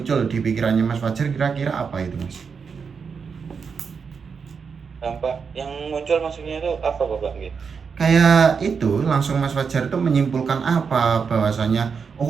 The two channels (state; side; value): quieter; left; 5.8 dB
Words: di pikirannya Mas Fajar kira-kira apa itu Mas? Dampak yang muncul maksudnya itu apa Bapak? Gitu. Kayak itu langsung Mas Fajar itu menyimpulkan apa bahwasanya